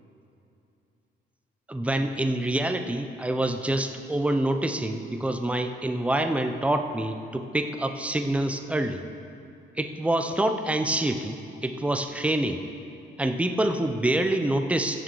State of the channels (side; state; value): both; normal; correlation 0.79